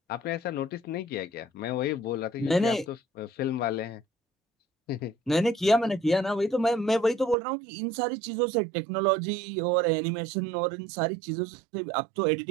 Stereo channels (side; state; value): left; drops out; at 7.4 s